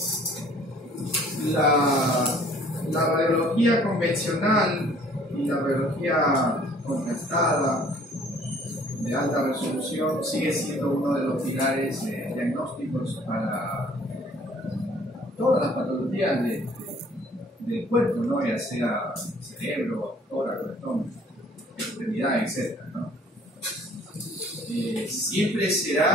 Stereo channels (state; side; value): normal; both; correlation 0.56